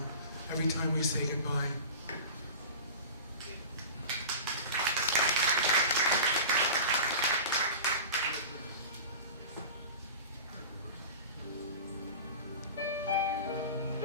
every time we say goodbye.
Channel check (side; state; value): both; inverted; correlation -0.34